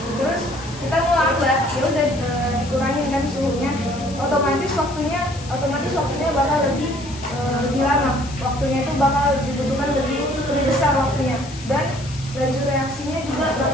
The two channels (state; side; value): noise; left; hiss, 17 dB below the sound